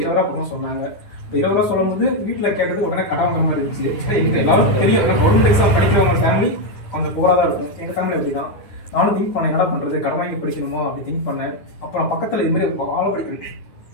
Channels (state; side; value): late; right; 10 ms